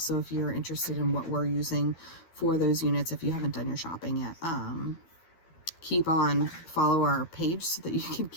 if you're interested in what we're using for those units, if you haven't done your shopping yet. Follow our page so that you can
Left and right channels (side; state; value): right; late; 12 ms